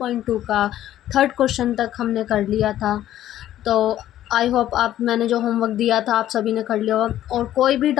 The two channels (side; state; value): right; quieter; 12.6 dB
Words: का थर्ड क्वेश्चन तक हमने कर लिया था। तो आई होप मैंने जो होमवर्क दिया था आप सभी ने कर लिया होगा। और कोई भी